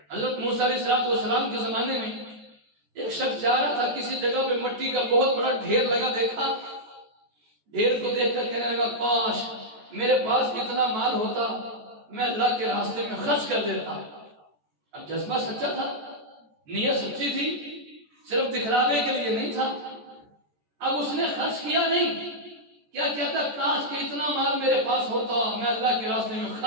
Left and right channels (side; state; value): left; late; 14 ms